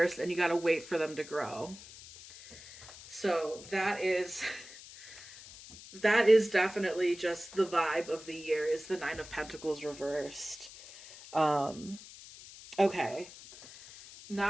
and you got to wait for them to grow. So that is definitely just the vibe of the year, is the 9 of Pentacles reversed. Okay.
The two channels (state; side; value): noise; left; hiss, 17 dB below the sound